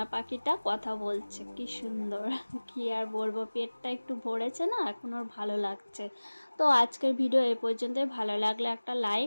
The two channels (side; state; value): both; inverted; correlation -1.00